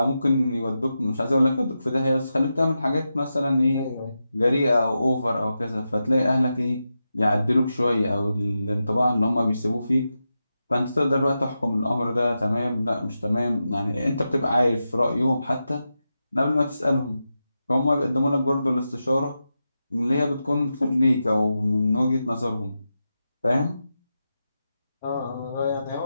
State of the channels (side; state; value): both; inverted; correlation -0.90